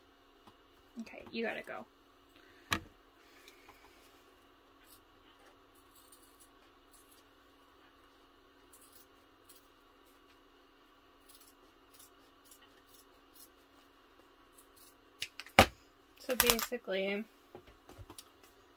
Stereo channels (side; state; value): both; identical; correlation 1.00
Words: Okay, you gotta go. So basically,